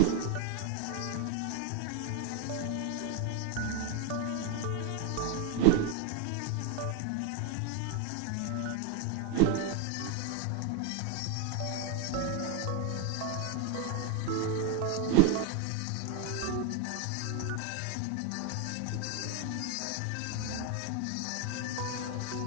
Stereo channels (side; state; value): both; different; correlation 0.00